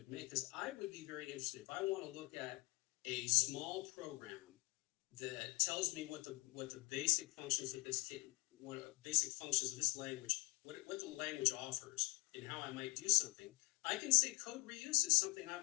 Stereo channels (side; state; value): right; quieter; 25.9 dB